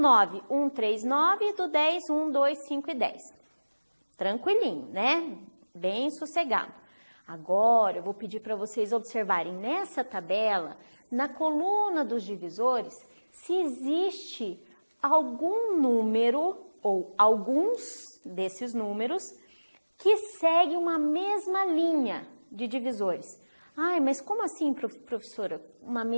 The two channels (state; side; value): inverted; both; correlation -1.00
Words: 1, 3, 9. E do 10, 1, 2, 5 e 10. Tranquilinho, né? Bem sossegado. Agora, eu vou pedir para vocês observarem nessa tabela, na coluna dos divisores, se existe algum número ou alguns desses números que seguem uma mesma linha de divisores. Ai, mas como assim, professora, uma